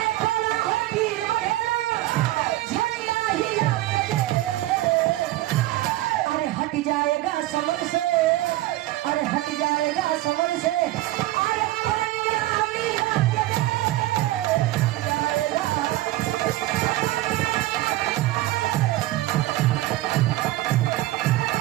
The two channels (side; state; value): left; quieter; 16.8 dB